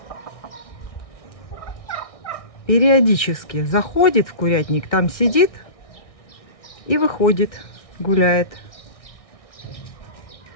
Периодически заходит в курятник, там сидит и выходит, гуляет.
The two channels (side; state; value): right; late; 1.6 ms